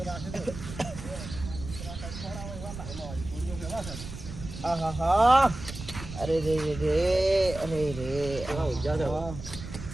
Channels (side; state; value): right; noise; rumble, 11 dB below the sound